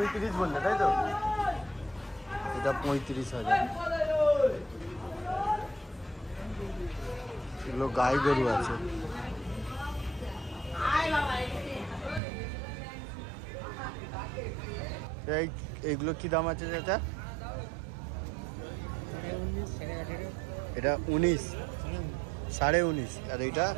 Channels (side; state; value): left; drops out; at 12.2 s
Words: বললে, তাই তো? এটা 35,000। এগুলো গাই গরু আছে। এইগুলো কি দাম আছে চাচা? এটা 19, 19.5, আর এইটা